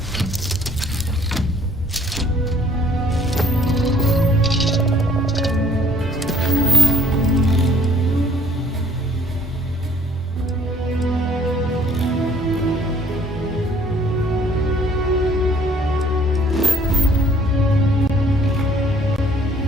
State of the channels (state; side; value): normal; both; correlation 0.60